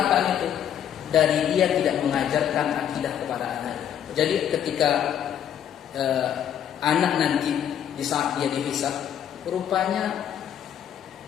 itu? Dari dia tidak mengajarkan akidah kepada anaknya. Jadi ketika anak nanti di saat dia dihisab, rupanya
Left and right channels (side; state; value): right; quieter; 9.6 dB